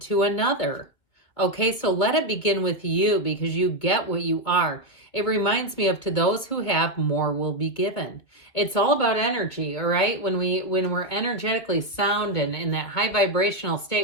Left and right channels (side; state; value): right; late; 2.4 ms